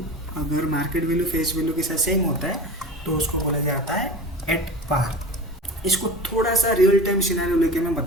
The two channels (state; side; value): normal; both; correlation 0.32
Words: अगर मार्केट वैल्यू फेस वैल्यू के साथ सेम होता है तो उसको बोला जाता है एट पार। इसको थोड़ा सा रियल टाइम सिनेरियो लेके मैं